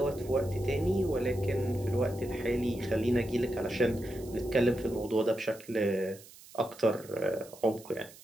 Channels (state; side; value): noise; right; hiss, 20 dB below the sound